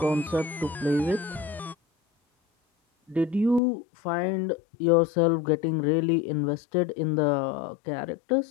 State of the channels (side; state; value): right; drops out; at 3.6 s